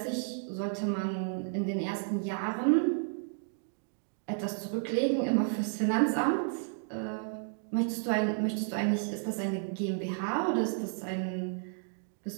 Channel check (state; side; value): silent; left; digital silence